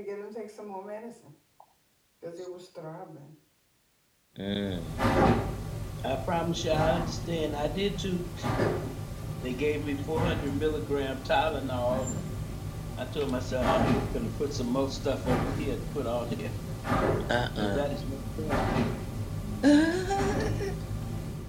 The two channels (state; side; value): identical; both; correlation 1.00